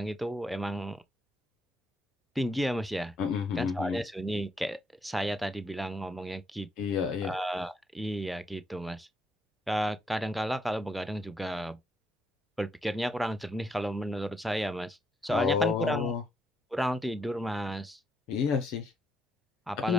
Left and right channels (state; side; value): normal; both; correlation 0.75